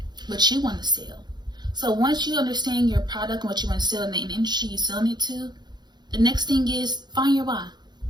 what you want to sell. So once you understand your product and what you want to sell in the industry you're selling it to, the next thing is find your why.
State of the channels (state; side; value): late; left; 0.21 ms